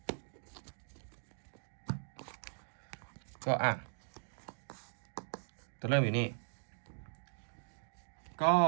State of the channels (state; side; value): silent; left; digital silence